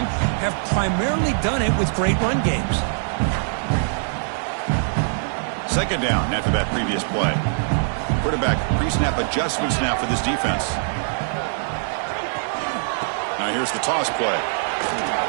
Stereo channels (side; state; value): left; silent; digital silence